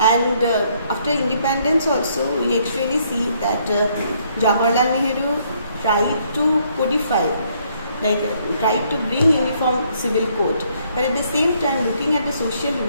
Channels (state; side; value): inverted; both; correlation -0.68